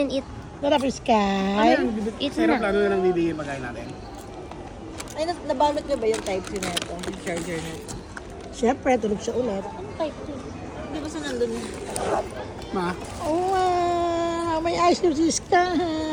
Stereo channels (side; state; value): both; identical; correlation 1.00